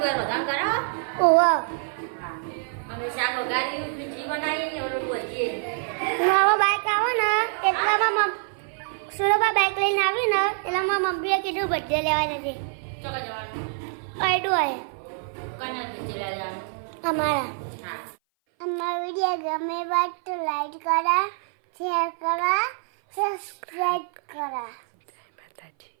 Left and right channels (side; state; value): left; silent; 57 dB below the other